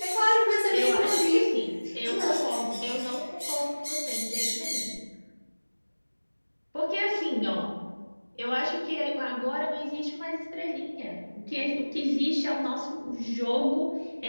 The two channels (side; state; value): both; inverted; correlation -1.00